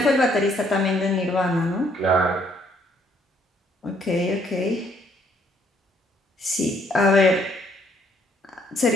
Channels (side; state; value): both; normal; correlation 0.67